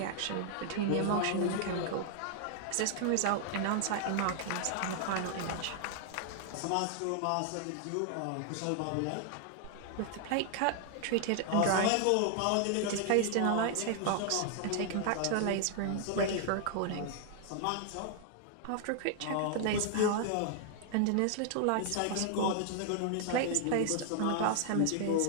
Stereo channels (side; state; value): both; different; correlation 0.00